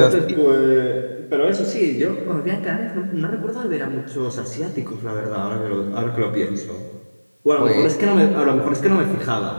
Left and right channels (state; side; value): inverted; both; correlation -1.00